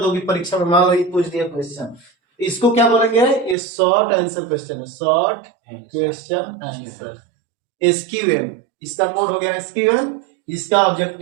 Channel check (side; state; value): left; drops out; at 3.6 s